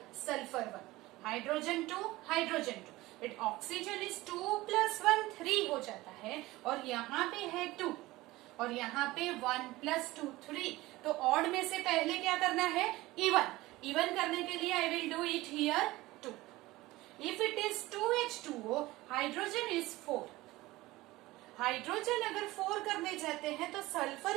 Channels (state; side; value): quieter; left; 18.9 dB